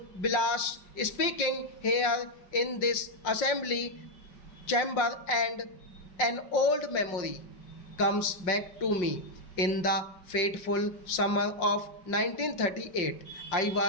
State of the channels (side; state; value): right; late; 5.6 ms